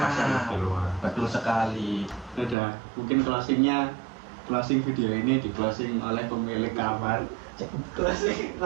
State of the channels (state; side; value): drops out; left; at 2.6 s